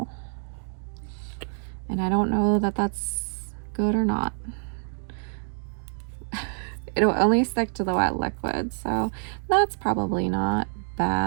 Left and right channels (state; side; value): silent; left; 60 dB below the other